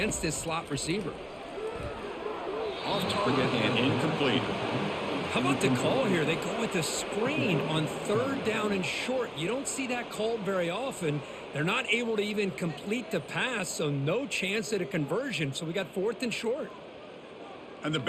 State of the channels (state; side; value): identical; both; correlation 1.00